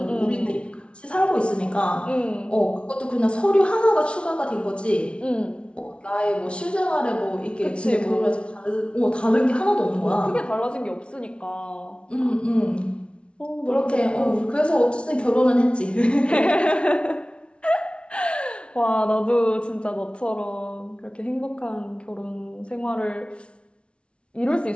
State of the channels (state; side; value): late; right; 0.059 ms